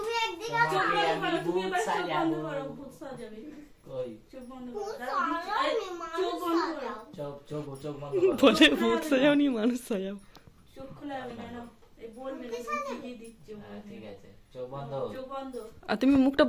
একদিকে চোখ তোমাকে আমি বন্ধ করো, তুমি ভূত এবার চোখ সাজাবো। বন্ধ করো, ভূত সাজাবে। কই চোখ বন্ধ ভূত করো, সাজাও, চোখ বন্ধ করো। চোখ বন্ধ করো। বলে ভূত সাজাও নি মানুষ সাজাও। চোখ খোলা হবে না, নাও। এই বলবে না, কি দিচ্ছ? হ্যাঁ, ঠিক আছে, চোখ বন্ধ। চোখ বন্ধ। আর তুমি মুখটা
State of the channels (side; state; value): both; identical; correlation 1.00